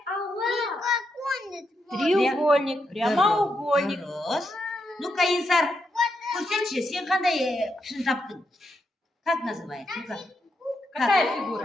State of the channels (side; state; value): both; normal; correlation 0.82